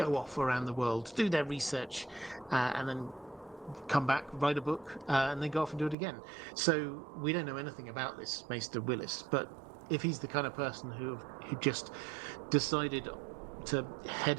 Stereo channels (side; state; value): left; drops out; at 6.0 s